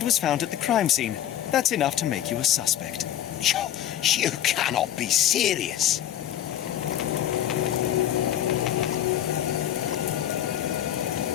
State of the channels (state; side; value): quieter; right; 11.4 dB